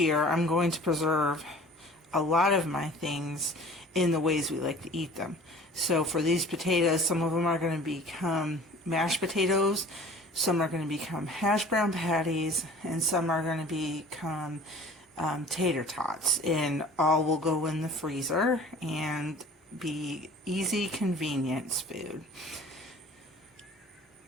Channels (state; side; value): normal; both; correlation 0.46